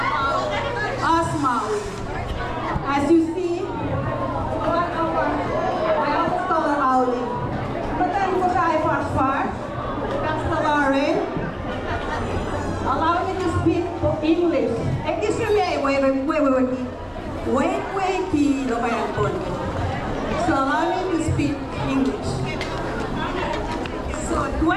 of Maui. As you see, one of our, I always call her Auli. Matan ko siya ay far, Lauren. Allow me to speak English. Excuse me, wait, so allow me to speak English. So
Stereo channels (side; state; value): both; identical; correlation 1.00